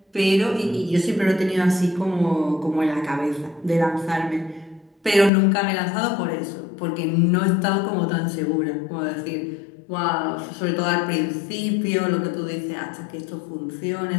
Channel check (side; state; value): right; drops out; at 5.3 s